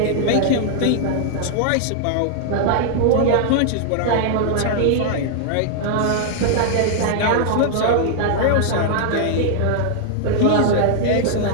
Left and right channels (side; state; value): both; different; correlation -0.01